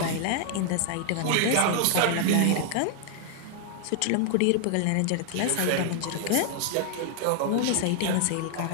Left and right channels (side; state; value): both; different; correlation 0.00